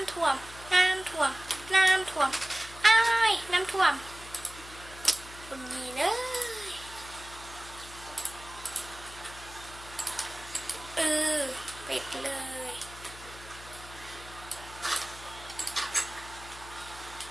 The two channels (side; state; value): left; noise; hum, 17 dB below the sound